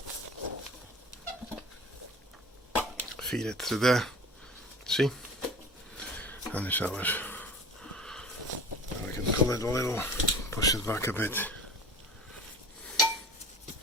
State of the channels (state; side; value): normal; both; correlation 0.38